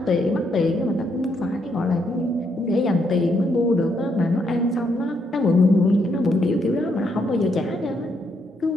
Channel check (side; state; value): both; normal; correlation 0.76